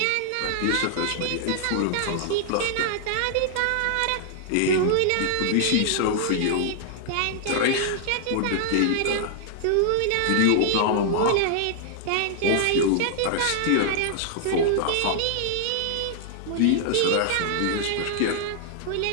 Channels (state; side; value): different; both; correlation -0.01